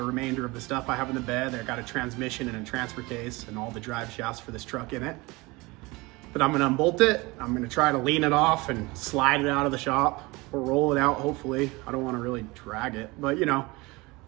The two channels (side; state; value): left; quieter; 23.5 dB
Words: remainder of the stuff I have in the bed. I got a transmission and a transfer case and all the drive shafts for this truck in it. But I'm gonna unbolt it. I'm gonna try to lean it off and slide it out of the shop or roll it out, hopefully. I don't wanna really drag it, but you know,